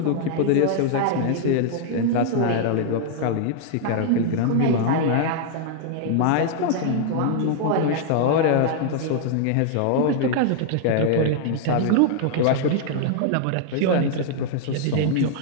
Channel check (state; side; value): different; both; correlation -0.01